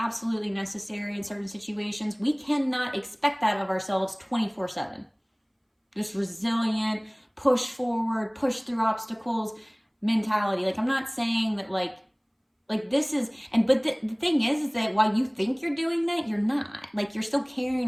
necessary in certain situations, we cannot expect that of ourselves 24/7. This resilient, push forward, push through obstacles mentality. Like, I'm not saying that like this is, but the thing is that while you think you're doing that, you're not. Like, you're still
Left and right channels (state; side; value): identical; both; correlation 1.00